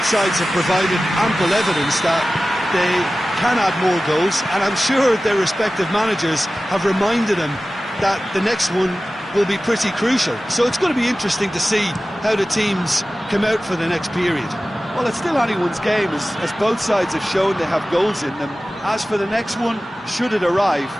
sides have provided ample evidence that they can add more goals, and I'm sure their respective managers have reminded them that the next one will be pretty crucial. So it's going to be interesting to see how the teams come out for the next period. Well, it's still anyone's game, as both sides have shown they have goals in them. As for the next one, should it arrive,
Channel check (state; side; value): normal; both; correlation 0.96